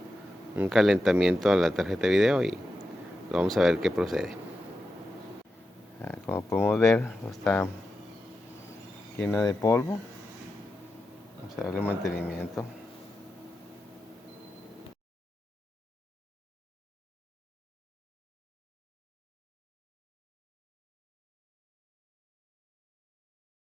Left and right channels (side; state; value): both; normal; correlation 0.90